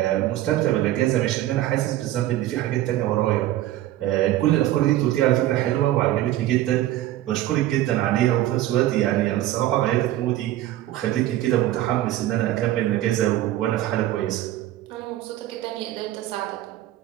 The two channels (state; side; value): quieter; left; 14.3 dB